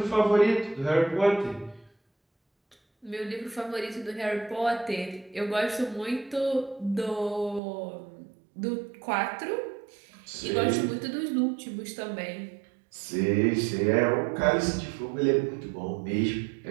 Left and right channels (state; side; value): drops out; left; at 7.6 s